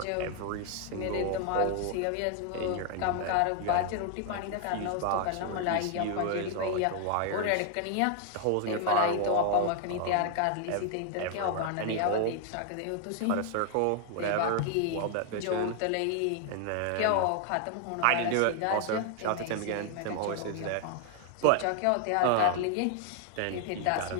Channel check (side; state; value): both; different; correlation 0.00